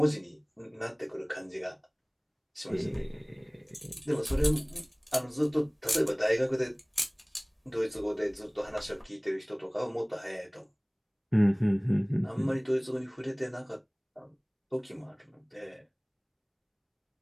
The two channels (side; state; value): both; identical; correlation 1.00